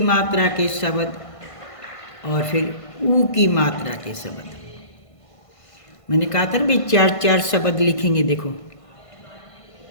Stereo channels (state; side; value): late; right; 1.5 ms